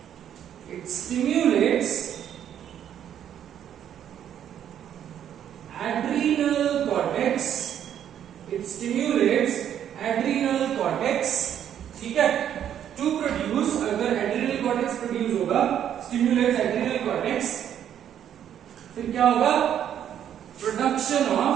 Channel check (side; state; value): left; quieter; 9.9 dB